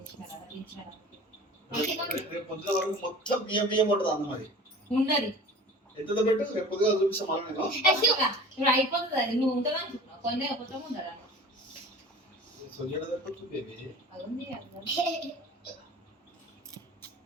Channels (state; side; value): normal; both; correlation 0.41